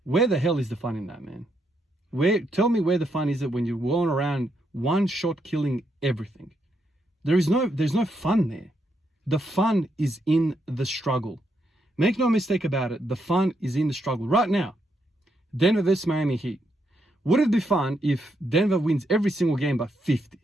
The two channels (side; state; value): both; normal; correlation 0.79